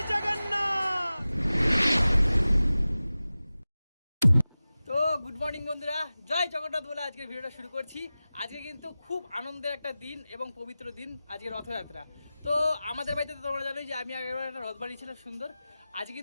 জগন্নাথ। তো good morning বন্ধুরা, জয় জগন্নাথ বলে আজকের ভিডিওটা শুরু করছি। আজকে কিন্তু খুব আনন্দের একটা দিন এবং পবিত্র দিন, আজকে রথযাত্রা। তো আমাদের বাড়িতে তো তোমরা জানোই যে আমি আগেরবার একটা রথ বানিয়েছিলাম সুন্দর। আজকে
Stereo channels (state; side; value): inverted; both; correlation -0.96